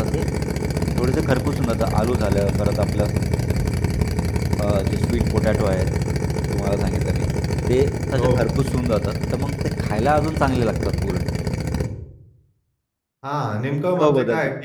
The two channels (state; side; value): identical; both; correlation 1.00